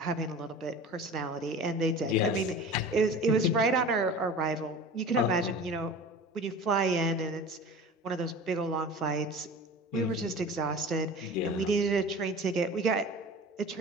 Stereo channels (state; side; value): normal; both; correlation 0.37